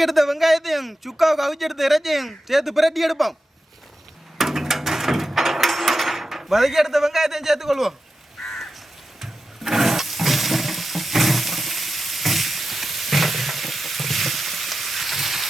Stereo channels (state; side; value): normal; both; correlation 0.91